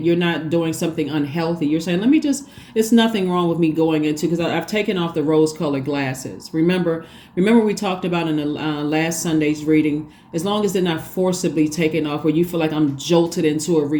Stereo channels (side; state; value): both; identical; correlation 1.00